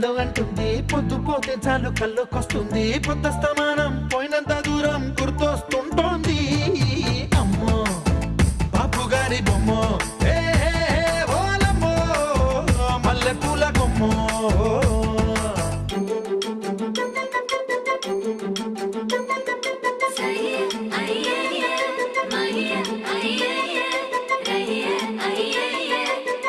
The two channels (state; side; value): identical; both; correlation 1.00